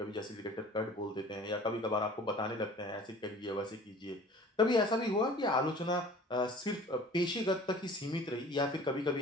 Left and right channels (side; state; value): both; normal; correlation 0.47